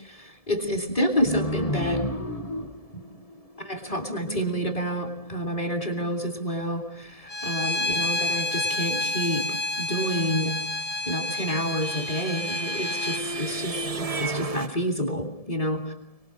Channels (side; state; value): right; late; 1.7 ms